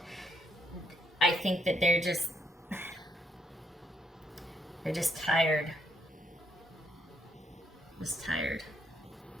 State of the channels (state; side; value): normal; both; correlation 0.75